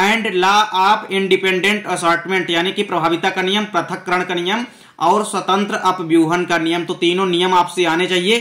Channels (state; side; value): identical; both; correlation 1.00